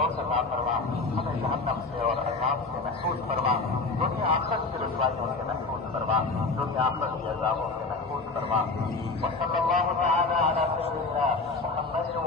अता फरमा। हमें जहन्नम से और अज़ाब से महफूज फरमा। दुनिया आखिरत की रुसवाइयों से महफूज फरमा। दुनिया आखिरत के अज़ाबों से महफूज फरमा। वसल्लल्लाहु तआला अला सय्यिदिना मुहम्मद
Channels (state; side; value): quieter; right; 3.7 dB